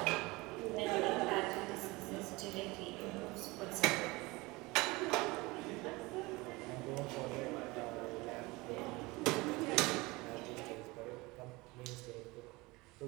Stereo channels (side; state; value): left; quieter; 23.0 dB